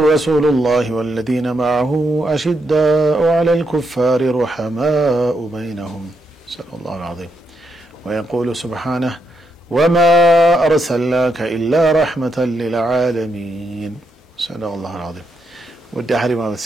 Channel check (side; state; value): both; normal; correlation 0.81